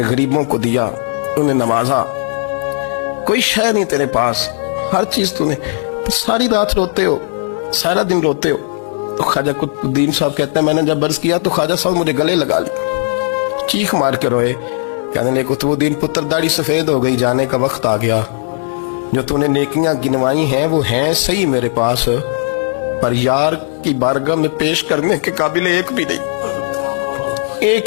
غریبوں کو دیا, انہیں نوازا, کوئی شے نہیں تیرے پاس, ہر چیز تو نے. ساری رات روتے ہو, سارا دن روتے ہو. تو خواجہ قطب الدین صاحب کہتے ہیں میں نے جب عرض کیا تو خواجہ صاحب مجھے گلے لگا لی, چیخ مار کے روئے, کہنے لگے قطب الدین پتر داڑھی سفید ہو گئی, جانے کا وقت آ گیا. جو تو نے نیکیاں گنوائی ہیں وہ ہیں صحیح میرے پاس, پر یار کی بارگاہ میں پیش کرنے کے قابل ایک بھی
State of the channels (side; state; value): right; silent; digital silence